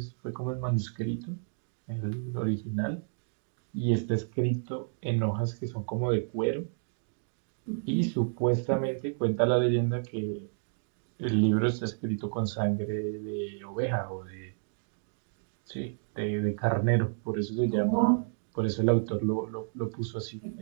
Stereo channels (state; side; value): silent; left; digital silence